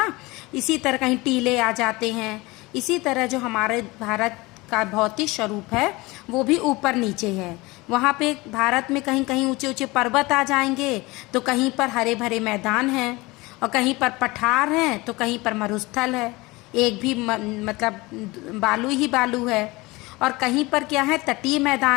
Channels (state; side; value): quieter; right; 22.4 dB